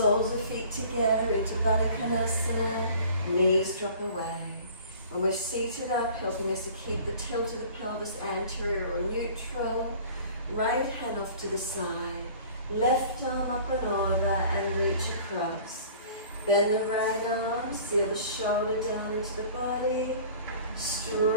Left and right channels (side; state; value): both; inverted; correlation -0.47